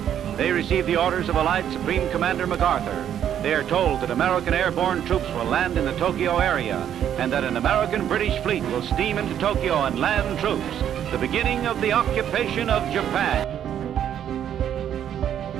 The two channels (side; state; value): left; quieter; 9.9 dB